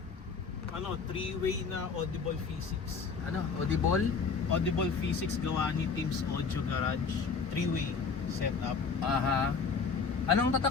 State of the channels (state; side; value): quieter; right; 5.2 dB